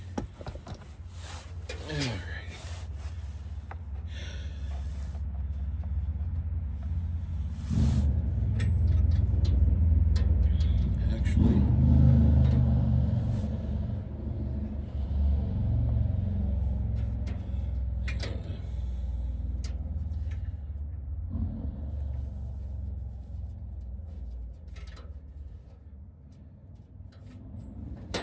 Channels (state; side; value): identical; both; correlation 1.00